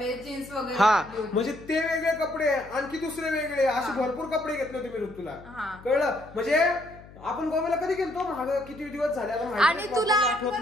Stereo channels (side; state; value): left; noise; hum, 20 dB below the sound